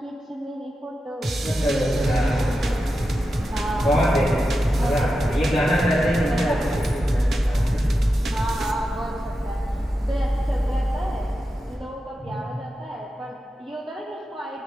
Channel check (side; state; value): both; normal; correlation 0.90